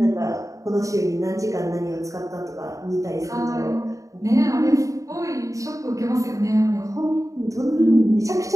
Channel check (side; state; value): left; late; 0.16 ms